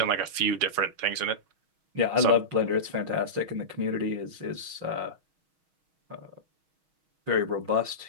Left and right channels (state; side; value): late; left; 6.3 ms